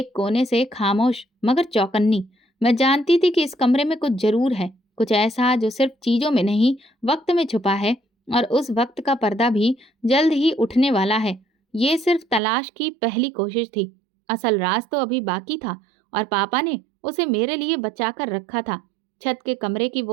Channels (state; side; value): drops out; left; at 12.4 s